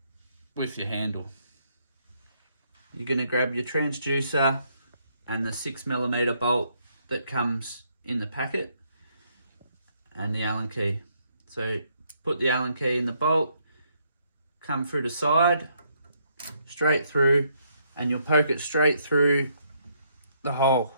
with your handle. You're going to grab your transducer and the 6mm bolt that comes in the packet and the Allen key. So put the Allen key in the bolt, come through the side, straight through, and you'll poke it straight through the hole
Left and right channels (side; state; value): both; inverted; correlation -0.72